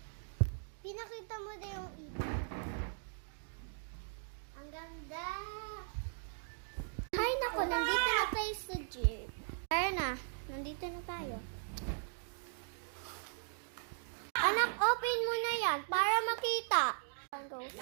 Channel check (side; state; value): left; silent; digital silence